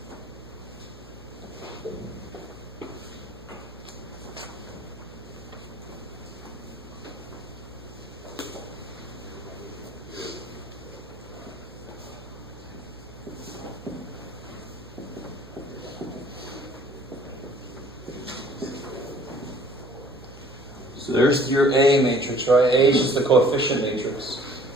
So there's your A matrix, right? A is just the coefficient matrix.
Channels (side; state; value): right; noise; hum, 19 dB below the sound